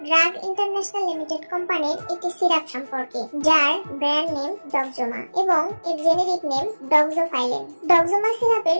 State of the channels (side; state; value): both; inverted; correlation -1.00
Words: drug international limited কোম্পানির একটি সিরাপ সম্পর্কে, যার ব্র্যান্ড নেম ডক্সোমা এবং এর জেনেরিক নেম ডক্সোফাইলিন। ডক্সোমা সিরাপের